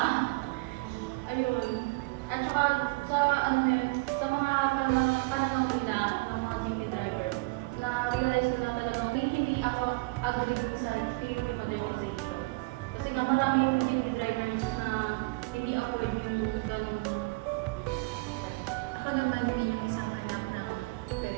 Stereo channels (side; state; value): left; quieter; 25.9 dB